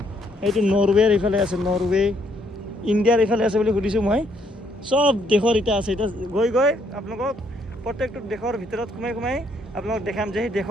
এইটো নৰৱেৰ এইফালে আছে, নৰৱে ইণ্ডিয়াৰ এইফালে আছে বুলি সুধিছোঁ মই। চব দেশৰ এতিয়া আছে। এতিয়া গৈ আপোনালোকক প্ৰত্যেকটো দেশৰ ভিতৰত সোমাই আপোনালোকক দেখাম যে সেই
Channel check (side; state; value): both; normal; correlation 0.70